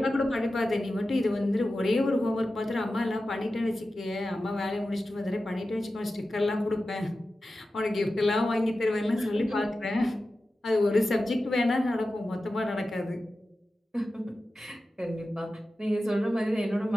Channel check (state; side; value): normal; both; correlation 0.93